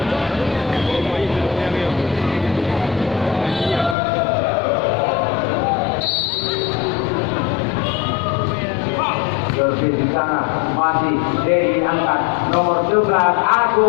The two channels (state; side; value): drops out; right; at 4.0 s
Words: Servis di sana masih Dedi angkat nomor 11